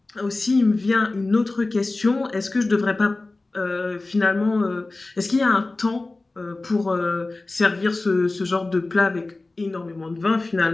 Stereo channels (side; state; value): right; quieter; 3.2 dB